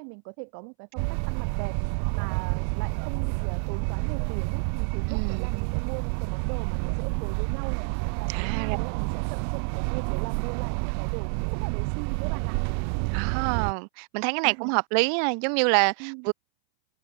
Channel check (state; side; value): silent; left; 60 dB below the other